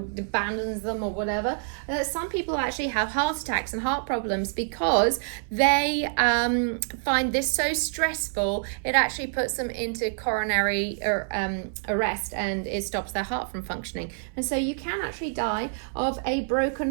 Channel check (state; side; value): silent; left; 60 dB below the other